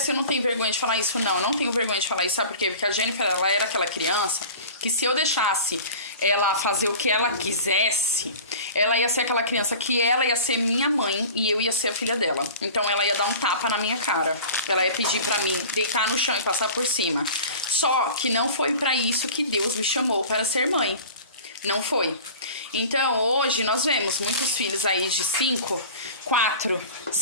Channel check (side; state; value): both; inverted; correlation -0.39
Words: você não tem vergonha de falar isso? Não tenho vergonha de falar isso, sabe por quê? Porque a Jennifer, ela era aquela criança que, se eu deixasse ela fazer o que ela quisesse, ela ia ser aquela criança que ela ia ser minha mãe e eu ia ser a filha dela. Então ela ia dar um tapa na minha cara, ela ia pedir pra mim deitar no chão e passar por cima. Só que não foi pra isso que Deus me chamou, para ser mãe. Não foi. Então, hoje nós vemos muitos filhos aí de 5, 4,